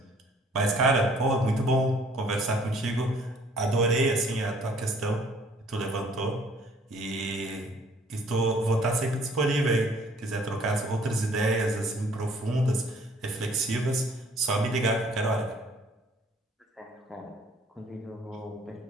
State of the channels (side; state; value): both; normal; correlation 0.58